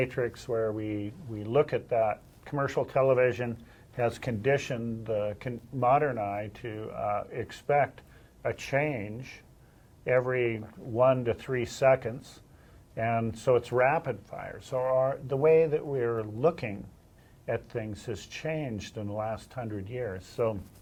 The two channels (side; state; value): both; identical; correlation 1.00